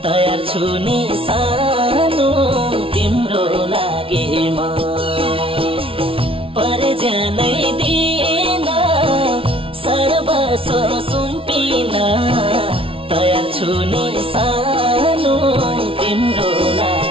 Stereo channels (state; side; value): late; left; 0.26 ms